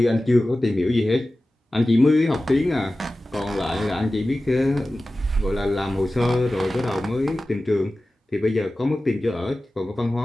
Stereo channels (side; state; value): both; normal; correlation 0.96